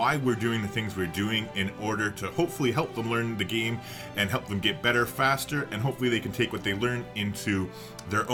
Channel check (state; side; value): identical; both; correlation 1.00